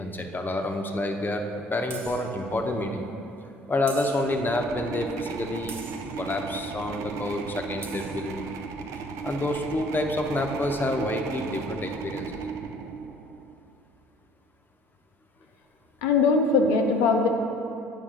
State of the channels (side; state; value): both; normal; correlation 0.54